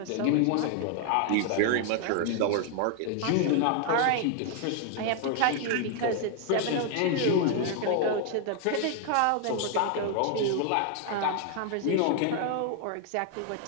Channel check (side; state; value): both; different; correlation 0.00